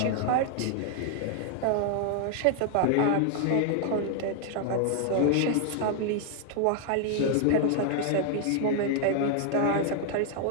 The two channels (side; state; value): both; different; correlation 0.00